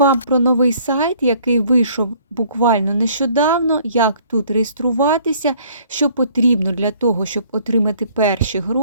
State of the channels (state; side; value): inverted; both; correlation -0.58